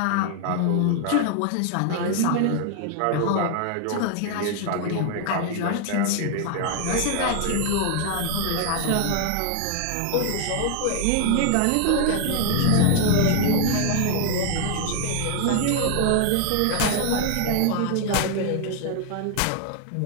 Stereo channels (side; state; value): both; different; correlation 0.00